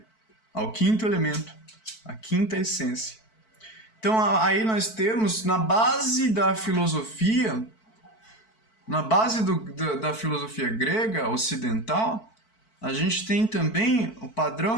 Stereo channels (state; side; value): late; right; 4.5 ms